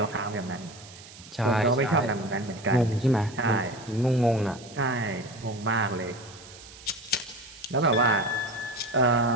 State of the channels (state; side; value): noise; right; hiss, 19 dB below the sound